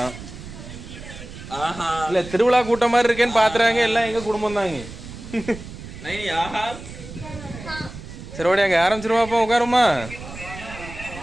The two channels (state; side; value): noise; right; rumble, 13 dB below the sound